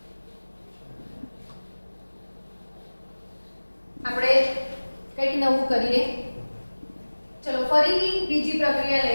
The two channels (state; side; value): inverted; both; correlation -1.00